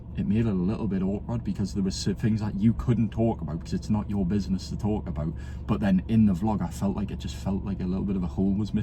it made it a little bit awkward because there was things that you couldn't talk about because it's not your business to talk about. But then in the vlog, I felt like it just felt like a little bit of a hole was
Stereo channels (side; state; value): both; identical; correlation 1.00